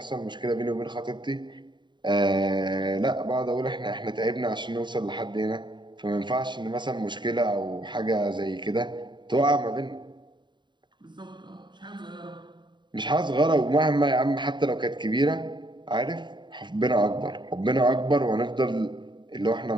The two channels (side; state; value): left; late; 0.22 ms